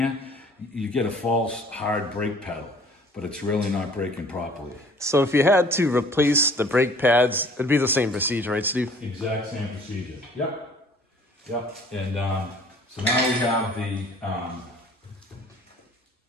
you get a false hard brake pedal, but it's really not braking properly. So if you had to replace the brake pads, it'd be the same procedure, right, Steve? Exact same procedure. Yep. Yep. And so now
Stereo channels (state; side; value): normal; both; correlation 0.53